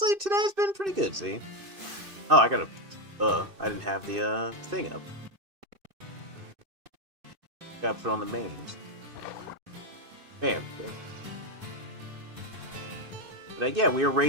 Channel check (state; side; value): late; left; 2.6 ms